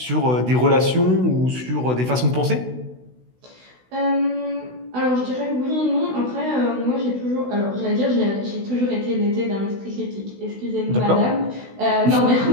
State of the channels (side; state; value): left; late; 16 ms